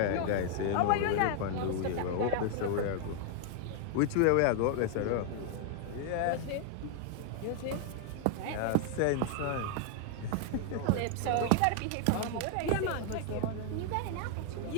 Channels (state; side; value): different; both; correlation 0.00